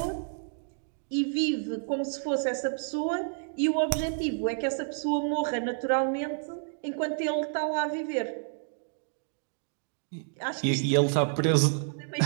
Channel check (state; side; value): silent; left; digital silence